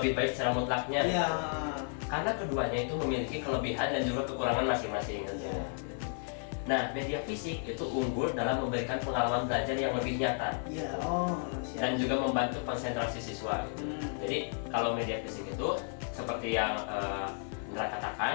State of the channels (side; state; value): right; silent; 56 dB below the other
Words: baik secara mutlaknya. Iya. Karena keduanya itu memiliki kelebihan dan juga kekurangan masing-masing. Iya. Nah, media fisik itu unggul dalam memberikan pengalaman belajar yang lebih nyata. Iya. Dan juga membantu konsentrasi siswa. Jadi kalau media fisik itu seperti yang Indra